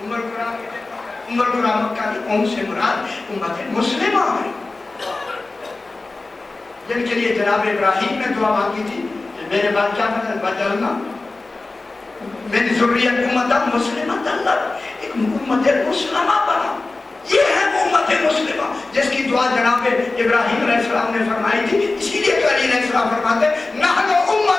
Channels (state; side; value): quieter; right; 3.4 dB